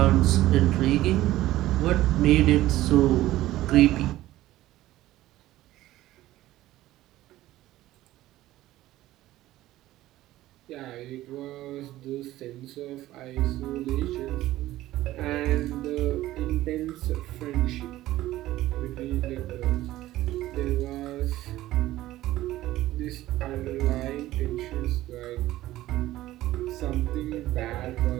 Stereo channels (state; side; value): quieter; left; 15.5 dB